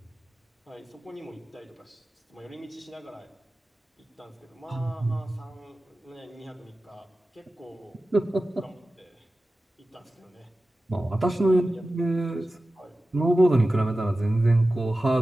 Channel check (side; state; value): both; normal; correlation 0.95